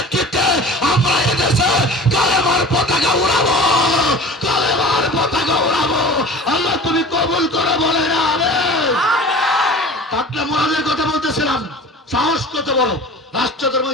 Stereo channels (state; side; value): normal; both; correlation 0.40